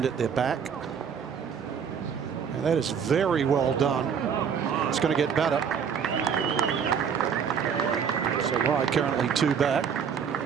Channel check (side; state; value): left; quieter; 7.2 dB